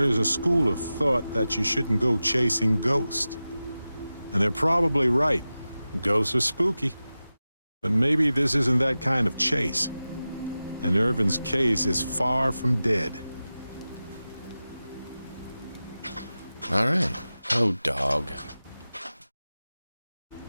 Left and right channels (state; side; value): inverted; both; correlation -0.95